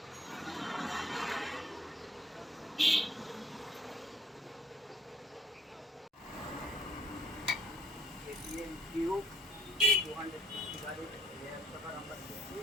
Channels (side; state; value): both; normal; correlation 0.62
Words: KTM Duke 250 গাড়ির রেয়ার শকার আমরা খুলছি।